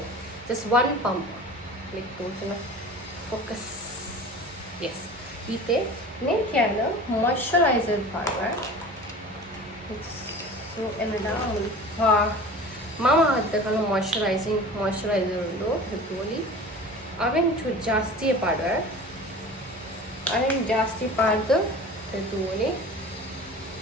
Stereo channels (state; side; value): normal; both; correlation 0.38